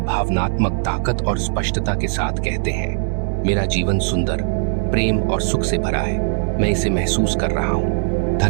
ताकत और स्पष्टता के साथ कहते हैं मेरा जीवन सुंदर, प्रेम और सुख से भरा है, मैं इसे महसूस कर रहा हूँ,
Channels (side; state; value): left; silent; digital silence